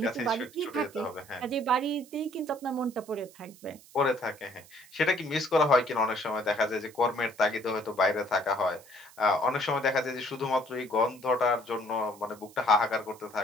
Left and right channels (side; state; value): right; noise; hiss, 23 dB below the sound